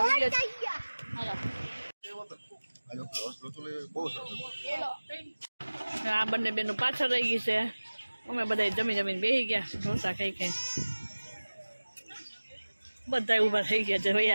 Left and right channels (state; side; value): inverted; both; correlation -1.00